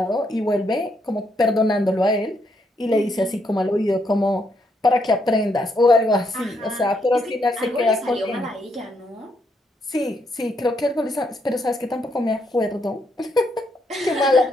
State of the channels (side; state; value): both; normal; correlation 0.76